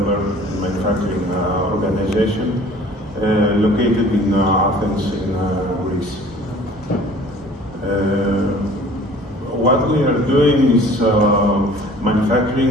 and manufacturing organization, located in Athens, in Greece. What we are doing is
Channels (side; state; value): both; normal; correlation 0.49